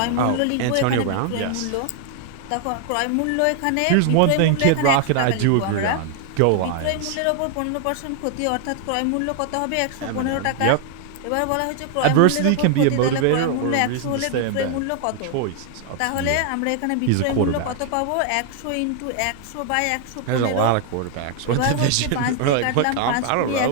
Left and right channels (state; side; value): different; both; correlation 0.00